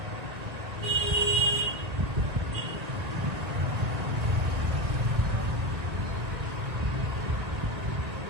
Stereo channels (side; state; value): left; late; 1.7 ms